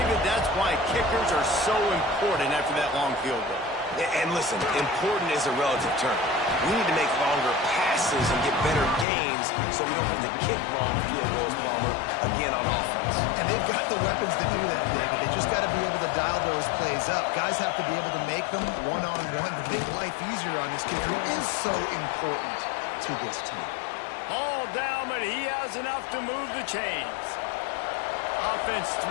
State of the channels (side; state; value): right; drops out; at 9.1 s